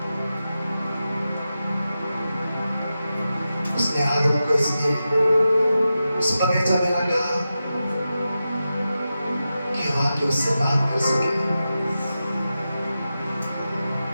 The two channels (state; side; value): inverted; both; correlation -0.91